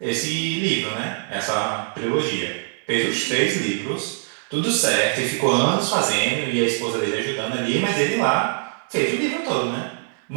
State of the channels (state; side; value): silent; left; digital silence